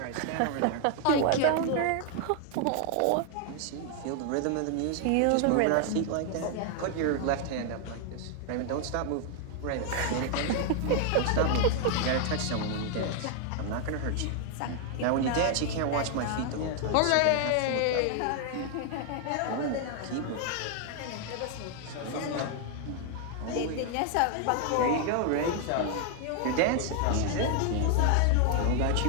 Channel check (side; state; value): both; different; correlation 0.00